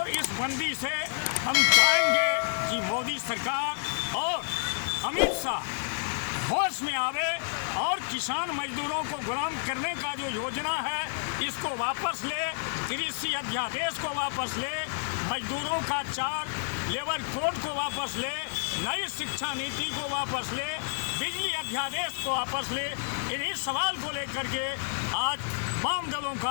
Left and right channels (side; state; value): right; silent; 58 dB below the other